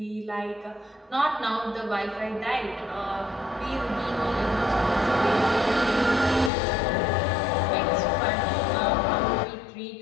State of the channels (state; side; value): drops out; right; at 6.5 s